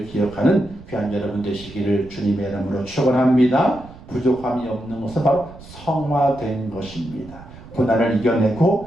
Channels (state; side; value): noise; right; rumble, 18 dB below the sound